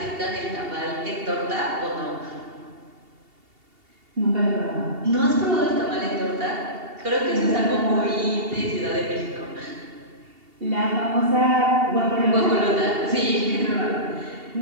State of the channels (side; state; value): left; late; 2.8 ms